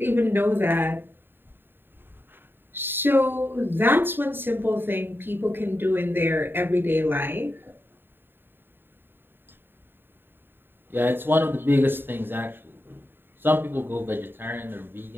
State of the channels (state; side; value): late; left; 0.099 ms